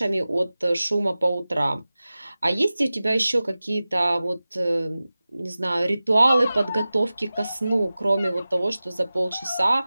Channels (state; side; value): inverted; both; correlation -0.96